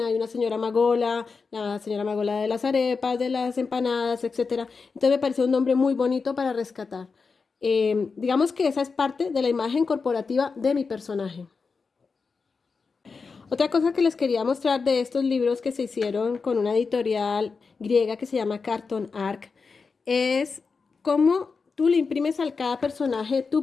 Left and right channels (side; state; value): right; quieter; 4.8 dB